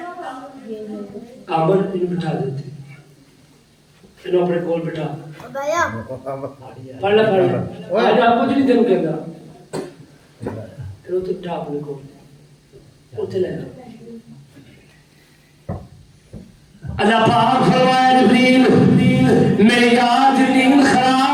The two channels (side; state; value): both; identical; correlation 1.00